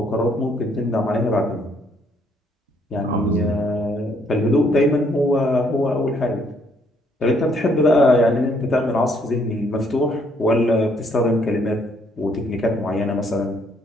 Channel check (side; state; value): both; normal; correlation 0.68